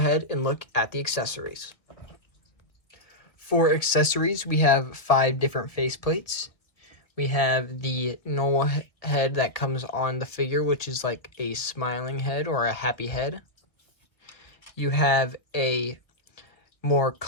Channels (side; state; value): right; late; 1.6 ms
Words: and look at the accessories. For accessories, we have 5 different faceplates. We have the normal head that comes on the figure, which is like a smiling head or a happy head. You have a more